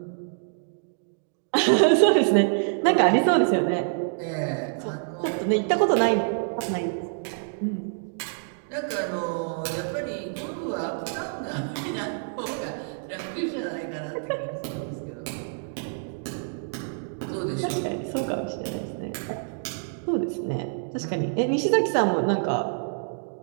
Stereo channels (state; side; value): silent; left; digital silence